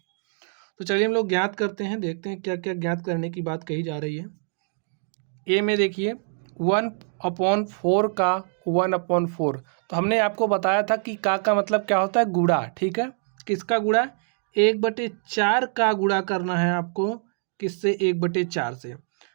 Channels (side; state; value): left; silent; 62 dB below the other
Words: तो चलिए हम लोग ज्ञात करते हैं, देखते हैं क्या क्या ज्ञात करने की बात कही जा रही है। ए में देखिए 1/4 का 1/4, तो हमने आपको बताया था कि का मतलब क्या होता है, गुणा। ठीक है, किसका गुणा? 1/4 का गुणा करना है आपको। किससे? 1/4 से।